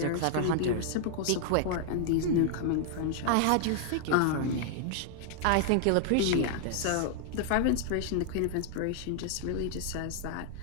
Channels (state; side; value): different; both; correlation -0.01